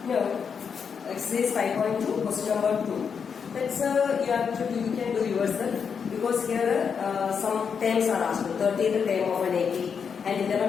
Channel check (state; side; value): quieter; right; 6.5 dB